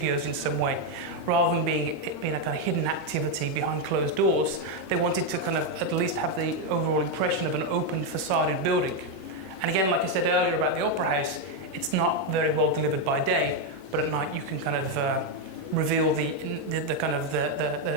in some way. Rather than it being a kind of hidden activity behind closed doors, they wanted to kind of at least have the overall impression of an open facaded building. And again, like I said earlier about the Opera House, it's not very well delivered by day, but at night you can kind of reveal the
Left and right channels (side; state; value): left; late; 8.5 ms